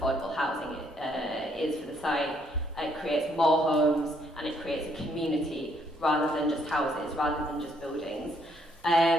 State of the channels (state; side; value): normal; both; correlation 0.70